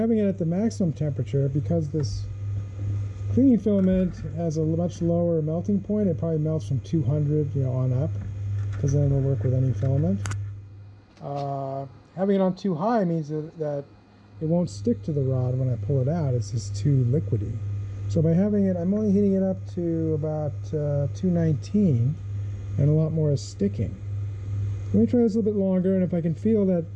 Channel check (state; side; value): identical; both; correlation 1.00